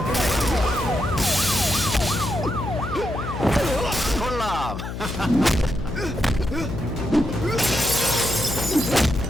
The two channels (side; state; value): left; noise; hum, 7 dB below the sound